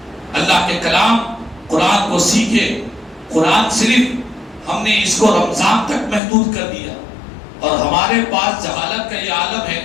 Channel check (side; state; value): right; drops out; at 6.2 s